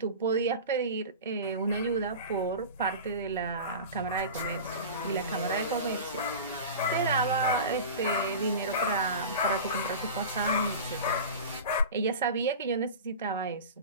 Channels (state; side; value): inverted; both; correlation -0.31